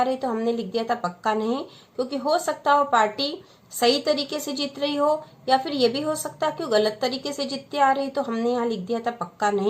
रही, तो हमने लिख दिया था पक्का नहीं, क्योंकि हो सकता है वो पार्टी सही तरीके से जीत रही हो, या फिर ये भी हो सकता है कि वो गलत तरीके से जीतती आ रही, तो हमने यहाँ लिख दिया था पक्का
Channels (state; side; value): identical; both; correlation 1.00